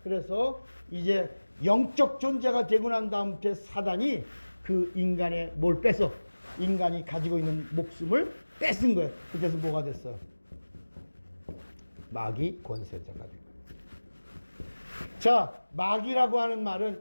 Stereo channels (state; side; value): inverted; both; correlation -1.00